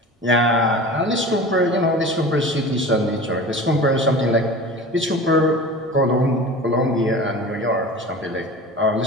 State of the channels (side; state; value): both; normal; correlation 0.36